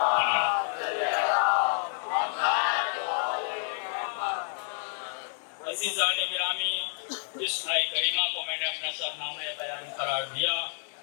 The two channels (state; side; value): silent; right; digital silence